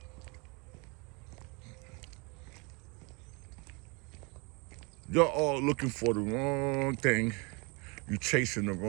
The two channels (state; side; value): quieter; left; 29.6 dB